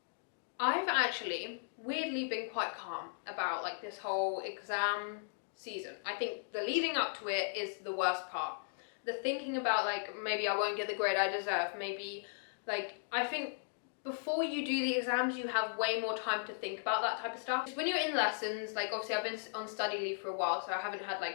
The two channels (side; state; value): right; silent; digital silence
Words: I've actually weirdly been quite calm about like this whole exam season. I think the leading up to it is the worst part. The thinking about like, maybe I won't get the grade I deserve, maybe like, I think before you do the exams you have way more time to think about that type of stuff. When you're in lessons, like obviously I've been on study leave for a while, so I haven't had